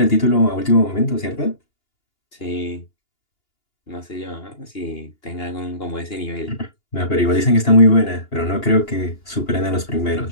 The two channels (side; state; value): right; late; 2.8 ms